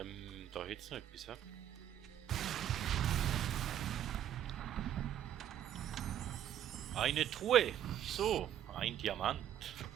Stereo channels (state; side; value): quieter; left; 10.8 dB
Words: hätte es noch etwas, hä? Eine Truhe. So, ein Diamant.